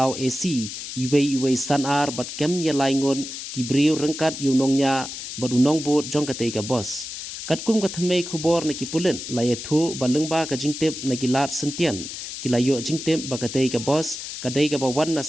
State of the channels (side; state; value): left; noise; hiss, 8 dB below the sound